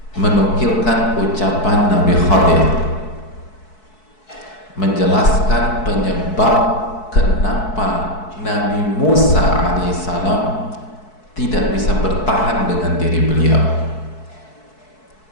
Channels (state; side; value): late; right; 4.6 ms